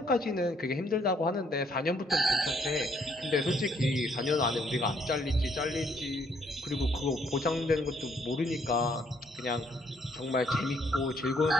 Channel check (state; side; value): normal; both; correlation 0.68